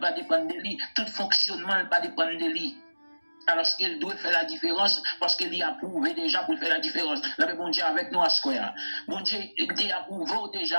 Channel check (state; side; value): inverted; both; correlation -1.00